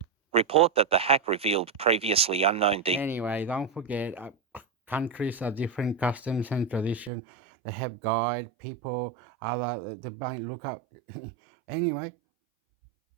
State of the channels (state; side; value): drops out; left; at 7.1 s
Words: Report that the hack revealed previously unknown Anyway, don't forget, countries are different customs and tradition. They have guide people, other they might look up. Anyway,